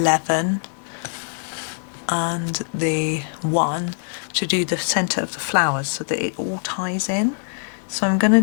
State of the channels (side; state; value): right; silent; digital silence